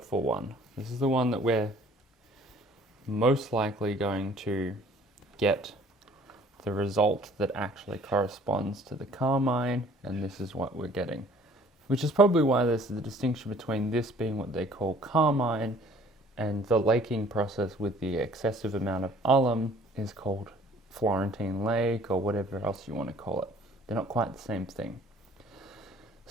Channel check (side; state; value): both; normal; correlation 0.54